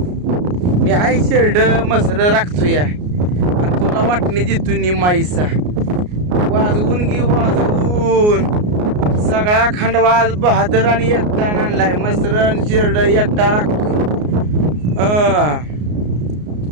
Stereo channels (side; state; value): left; late; 33 ms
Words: मी हाय शेरड मसर राखतो या आणि तुला वाटणी देतो निमाईसा. वाजवून घे वाजवून सगळा खंडवाज बहादर आणि एकटा आणलाय. मसरण शेरड एकटा राखतोय.